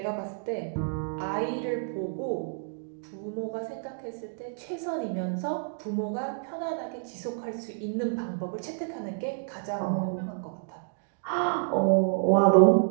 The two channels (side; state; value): left; silent; digital silence